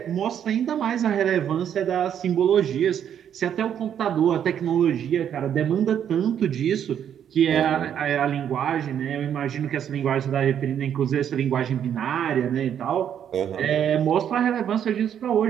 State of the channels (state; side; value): quieter; left; 9.2 dB